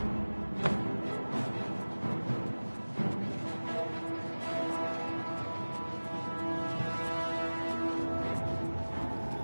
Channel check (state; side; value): inverted; both; correlation -1.00